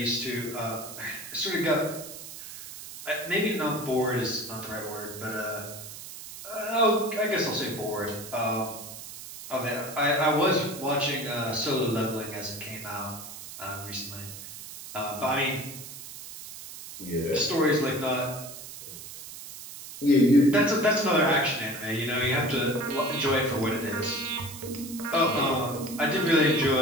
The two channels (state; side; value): noise; right; hiss, 12 dB below the sound